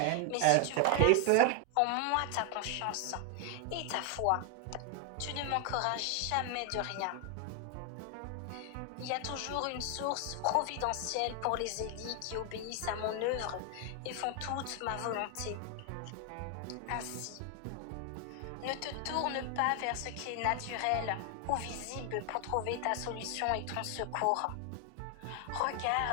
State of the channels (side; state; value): both; different; correlation 0.00